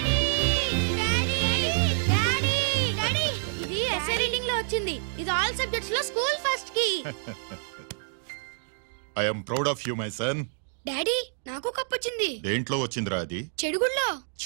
ఇది ఆల్ సబ్జెక్ట్స్ లో స్కూల్ ఫస్ట్ కి. I am proud of you, my son. Daddy నాకు cup వచ్చింది. దేంట్లో వచ్చిందిరా అది? చెడుగుళ్ళో.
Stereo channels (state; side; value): silent; left; digital silence